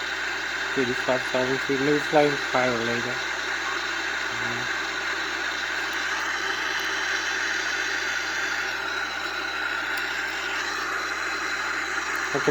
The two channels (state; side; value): noise; right; hum, 19 dB below the sound